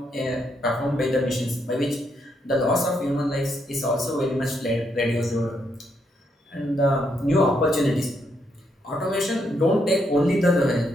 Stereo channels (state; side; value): normal; both; correlation 0.77